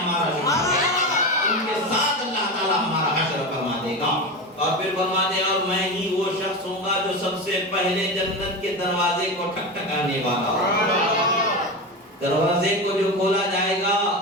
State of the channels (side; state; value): both; normal; correlation 0.22